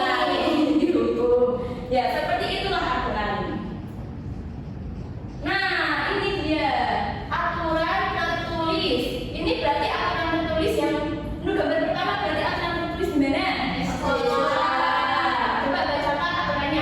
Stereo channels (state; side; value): identical; both; correlation 1.00